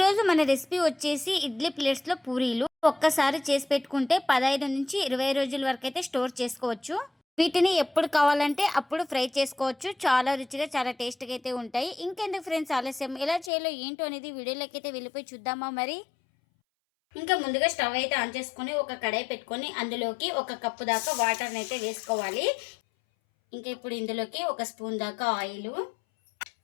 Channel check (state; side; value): drops out; right; at 13.5 s